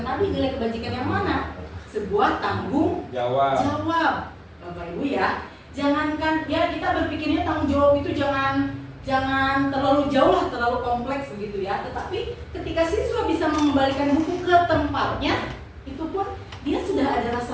tadi. Nilai kebajikan yang mana? Sebuah tanggung jawab. Bapak Ibu ya, jangankan ya kita berpikirnya tanggung jawab itu jangan terlalu jauh lah, terlalu kompleks begitu ya. Tetapi ketika siswa bisa mengembalikan buku ke tempatnya, itu pun dia sudah ada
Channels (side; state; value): both; identical; correlation 1.00